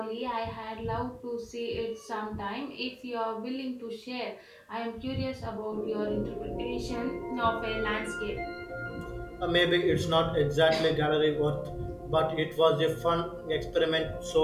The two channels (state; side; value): identical; both; correlation 1.00